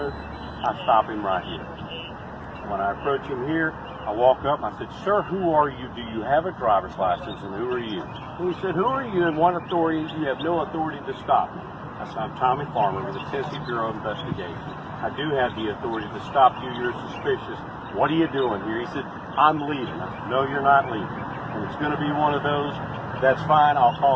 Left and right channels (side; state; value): both; identical; correlation 1.00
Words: I stop him right here. When I approach him here, I walk up. I said, "Sir, who are you? Do you have a driver's license? And who are you?" And he said, "Who are you? And what authority? You have no authority to stop me." I said, "I'm Tommy Farmer with the Tennessee Bureau of Investigation. I do have the authority to stop you. You're suspicious. What are you doing here?" He said, "I'm leaving." I said, "No, you're not leaving. And it's going to be one of those. That's fine. I'll